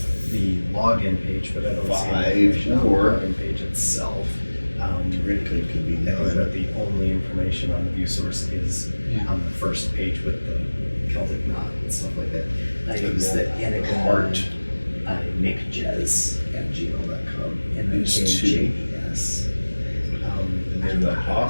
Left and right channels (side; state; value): both; inverted; correlation -1.00